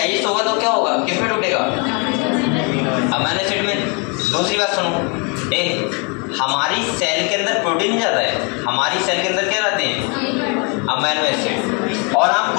होगा तो क्या होगा, किस में टूटेगा, अमीनो एसिड में। दूसरी बात सुनो, हमारी सेल के अंदर प्रोटीन नहीं जाता है, हमारी सेल के अंदर क्या रहते हैं, अमीनो एसिड। और आप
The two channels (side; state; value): right; quieter; 33.8 dB